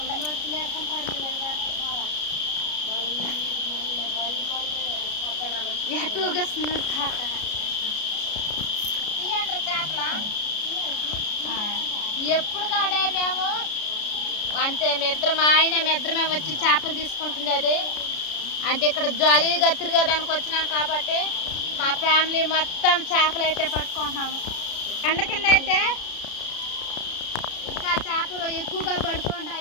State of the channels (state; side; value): late; right; 33 ms